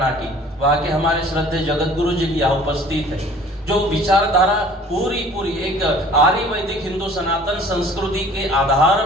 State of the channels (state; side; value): normal; both; correlation 0.50